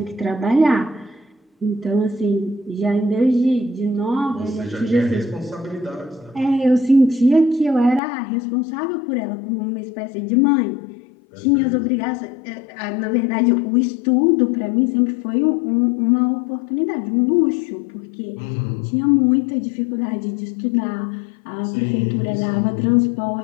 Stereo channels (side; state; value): right; drops out; at 8.0 s